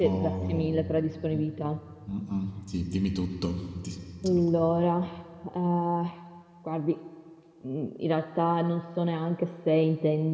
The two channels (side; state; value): both; identical; correlation 1.00